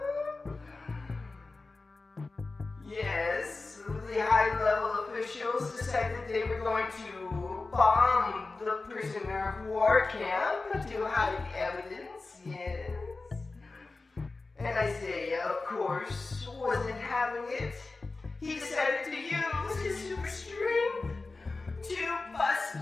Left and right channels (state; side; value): quieter; right; 3.6 dB